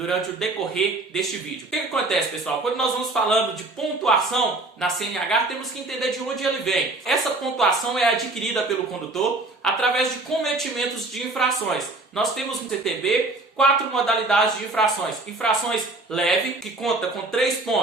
o decorrer deste vídeo. O que acontece, pessoal? Quando nós vamos falando de pontuação na CNH, temos que entender de onde ele vem. Essa pontuação é adquirida pelo condutor através de cometimentos de infrações. Nós temos no CTB 4 modalidades de infrações. Infrações leve, que conta com 3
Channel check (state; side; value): quieter; left; 3.0 dB